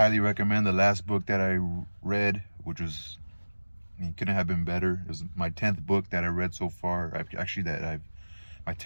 recommend the last book that I read, which was, couldn't have been better. It was my 10th book that I read so far. My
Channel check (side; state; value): both; inverted; correlation -1.00